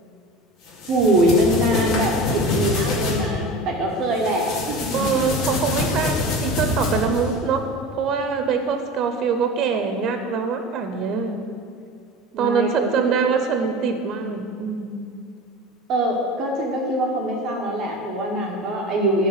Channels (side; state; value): both; normal; correlation 0.33